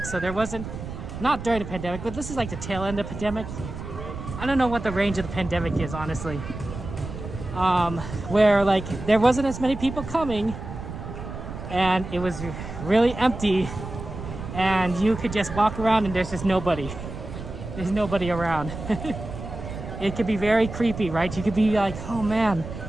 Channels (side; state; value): right; noise; rumble, 9 dB below the sound